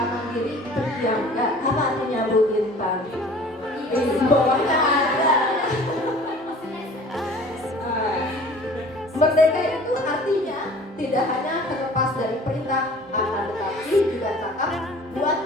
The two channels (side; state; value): both; normal; correlation 0.47